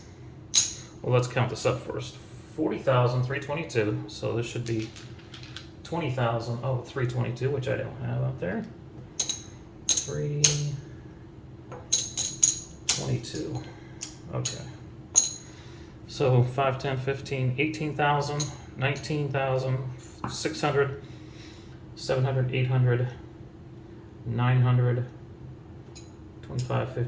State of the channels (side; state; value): both; identical; correlation 1.00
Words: let's count this up first. 40,322, so this should be 20,000. Oh, 322, which I don't have out there. 322. Okay. So 5, 10, 15, 18,000, 19,000, 600, 700, 800, 900, 25,